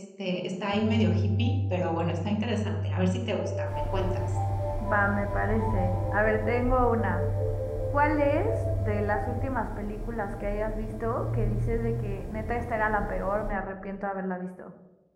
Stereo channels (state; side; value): identical; both; correlation 1.00